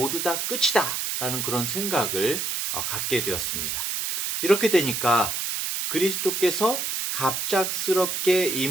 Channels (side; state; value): right; noise; hiss, 2 dB below the sound